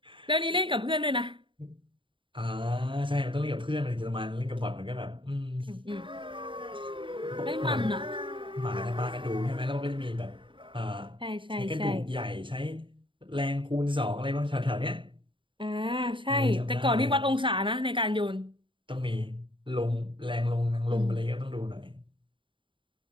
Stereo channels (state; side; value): late; left; 0.24 ms